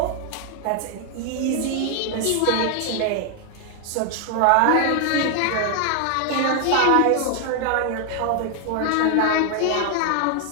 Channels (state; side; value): different; both; correlation 0.00